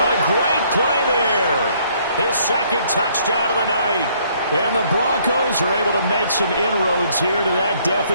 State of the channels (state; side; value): inverted; both; correlation -0.64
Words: A great play there. His 2nd touchdown of the night. And the Broncos are able to make some inroads here to that